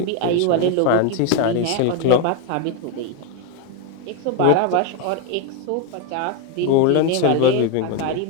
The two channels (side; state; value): both; different; correlation 0.02